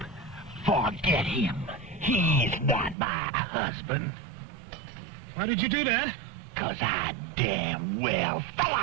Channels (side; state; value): left; drops out; at 3.0 s